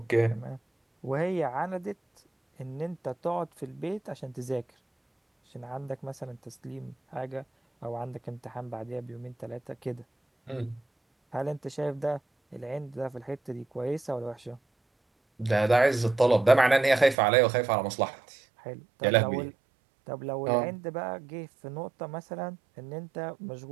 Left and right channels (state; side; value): drops out; left; at 17.2 s